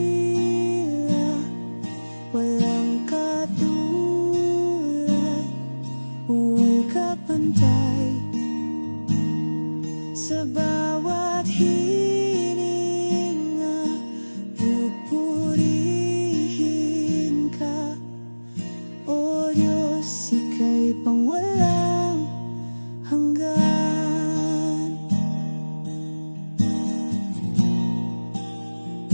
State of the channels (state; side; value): inverted; both; correlation -1.00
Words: walang katulad, walang kapantay. Sa bawat hininga, pupurihin ka, O Diyos, ika'y pangwalang hanggan.